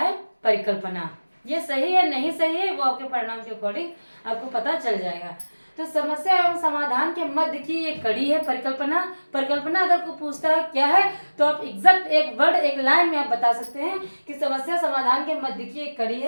परिकल्पना। ये सही है नहीं सही है वो आपके परिणाम के अकॉर्डिंग आपको पता चल जाएगा। तो समस्या एवं समाधान के मध्य की एक कड़ी है परिकल्पना। परिकल्पना अगर कोई पूछता है क्या है, तो आप एग्जैक्ट एक वर्ड एक लाइन में आप बता सकते हैं कि समस्या समाधान के मध्य की एक कड़ी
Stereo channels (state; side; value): inverted; both; correlation -1.00